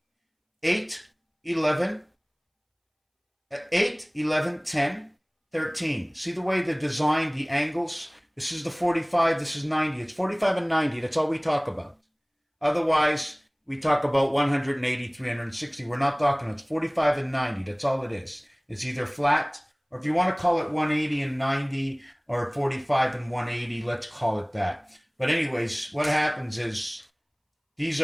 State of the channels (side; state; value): both; identical; correlation 1.00